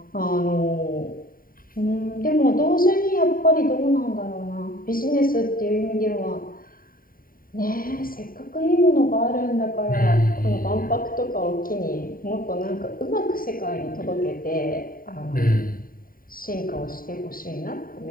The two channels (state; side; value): late; right; 0.41 ms